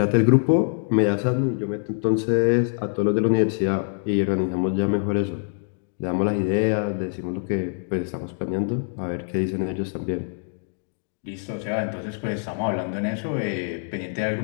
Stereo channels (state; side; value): silent; right; digital silence